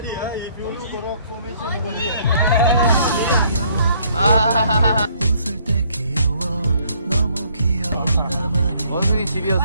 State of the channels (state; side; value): inverted; both; correlation -0.64